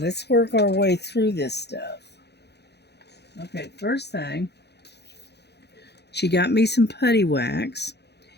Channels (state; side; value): late; right; 0.49 ms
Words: work our way through this stuff. Okay, first thing, she got me some putty wax